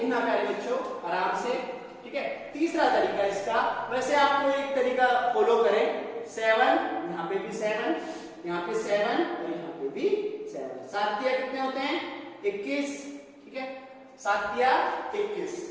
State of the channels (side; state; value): both; identical; correlation 1.00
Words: प्यारे बच्चों आराम से, ठीक है। तीसरा तरीका इसका, वैसे आपको एक तरीका फॉलो करें, 7, यहाँ पे भी 7, यहाँ पे 7 और यहाँ पे भी 7। 7 तिया कितने होते हैं 21, ठीक है। 7 तिया 21।